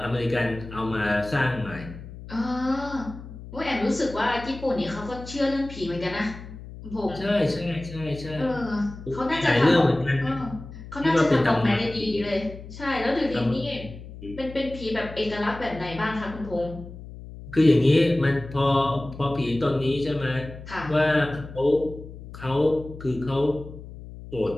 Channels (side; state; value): left; noise; hum, 14 dB below the sound